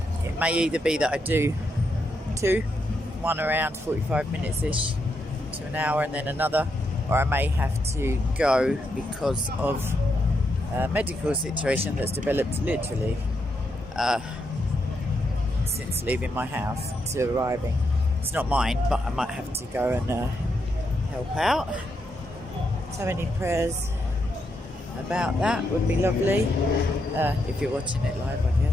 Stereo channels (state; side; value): normal; both; correlation 0.81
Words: It may either be that I do one around 45 minutes-ish to an hour and then another, or I may have to go because of a medical situation that's developed literally since leaving my house to arriving. It's not mine, but I might have to go and help out. So any prayers about that would be lovely, if you're watching it live, I